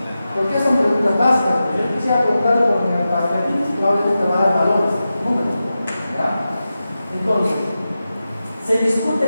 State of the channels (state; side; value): inverted; both; correlation -0.92